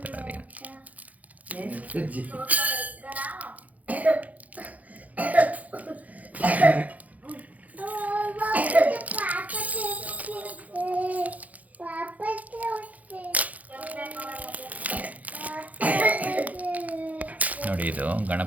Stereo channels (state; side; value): late; left; 0.075 ms